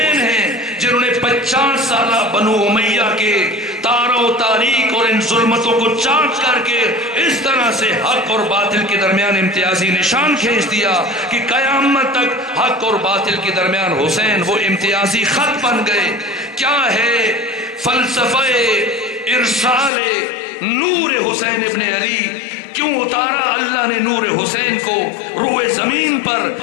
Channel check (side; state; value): right; drops out; at 19.9 s